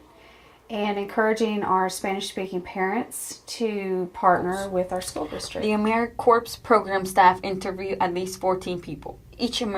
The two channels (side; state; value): both; identical; correlation 1.00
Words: and encouraging our Spanish-speaking parents to partner with our school district. The AmeriCorps program staff interview at least 14 people. Each